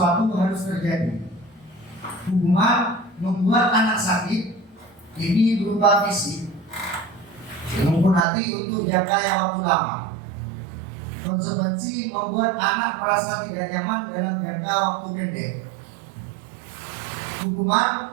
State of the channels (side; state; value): left; drops out; at 8.2 s